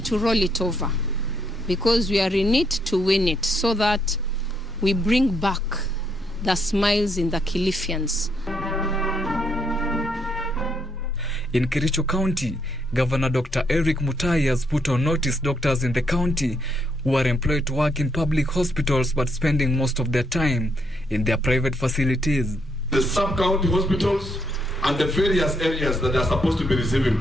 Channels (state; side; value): normal; both; correlation 0.75